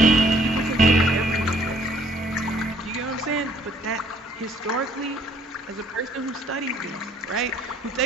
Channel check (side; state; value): both; normal; correlation 0.61